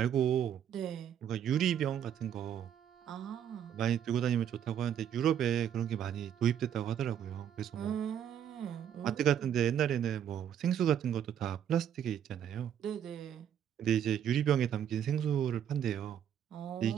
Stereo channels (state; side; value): quieter; left; 9.4 dB